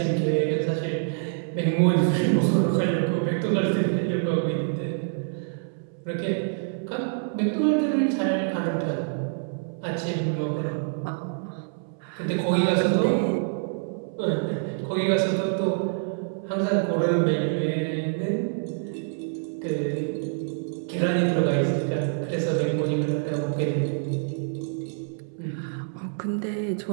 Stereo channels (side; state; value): left; silent; 61 dB below the other